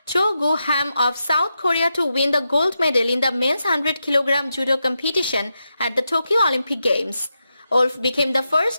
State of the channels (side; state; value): both; inverted; correlation -0.87